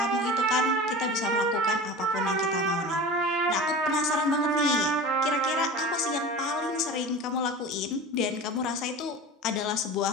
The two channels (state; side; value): normal; both; correlation 0.34